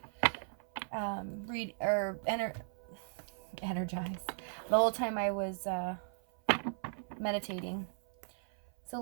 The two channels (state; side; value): silent; left; 53 dB below the other